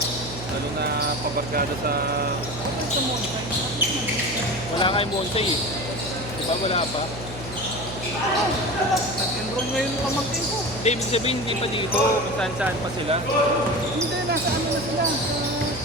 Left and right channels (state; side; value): noise; right; hum, 12 dB below the sound